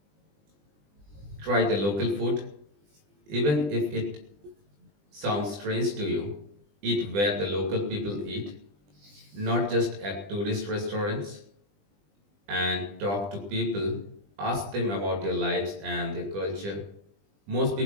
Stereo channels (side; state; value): left; late; 20 ms